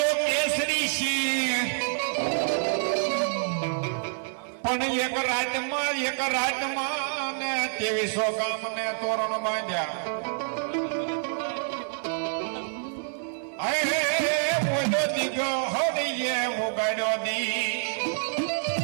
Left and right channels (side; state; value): left; silent; 60 dB below the other